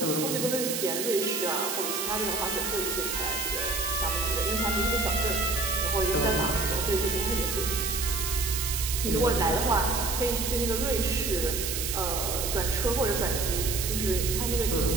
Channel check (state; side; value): noise; right; hiss, 2 dB below the sound